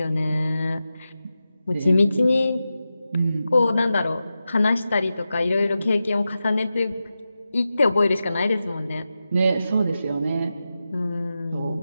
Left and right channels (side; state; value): both; inverted; correlation -0.91